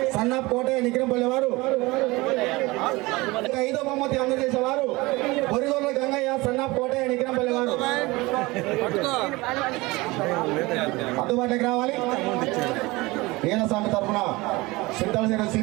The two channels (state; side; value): quieter; left; 22.2 dB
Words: సన్నాప్ కోటయ్య, నిగ్రంపల్లి వారు. 5వ బహుమతి అందజేసేవారు బొరిగొల్ర గంగయ్య, సన్నాప్ కోటయ్య, నిగ్రంపల్లి వారు. అందుబాటులోకి రావాలి. ఈరాస్వామి తరఫున సిద్ధాల